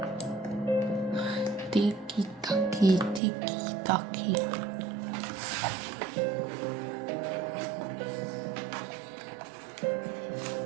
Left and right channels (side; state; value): left; drops out; at 3.2 s